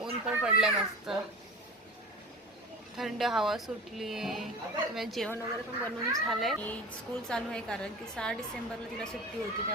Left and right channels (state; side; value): normal; both; correlation 0.33